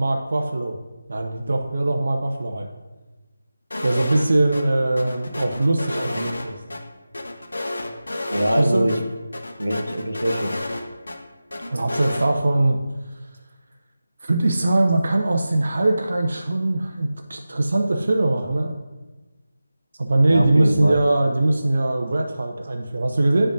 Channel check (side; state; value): both; inverted; correlation -0.95